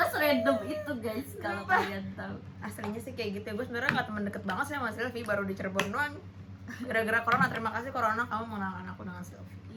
serandom itu guys, kalau kalian tahu. Aslinya sih kayak gitu ya, gue sebenarnya nggak temen deket banget sih sama Sylvie, baru di Cirebon doang. Gara-gara corona, terima kasih corona kamu mengenalkan aku dengan Sylvie.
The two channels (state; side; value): identical; both; correlation 1.00